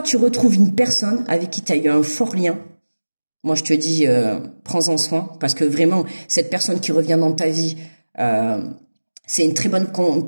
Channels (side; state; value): both; inverted; correlation -1.00